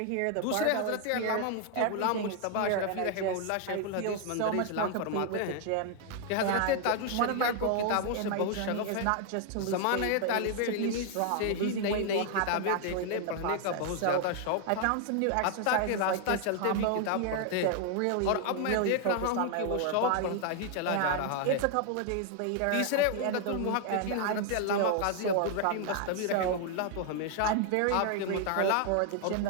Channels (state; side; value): different; both; correlation 0.00